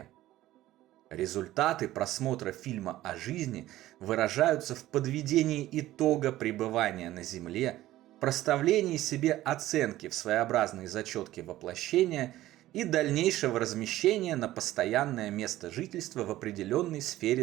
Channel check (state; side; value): quieter; left; 15.2 dB